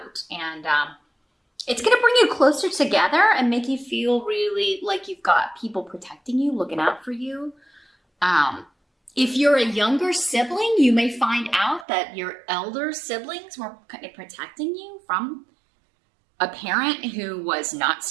And it's going to bring you closer together and make you feel really like you've got people protecting you, looking out for you. If you're a younger sibling, you may find out that your elder siblings were kind of protecting you from a parent who was not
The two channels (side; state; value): left; drops out; at 11.9 s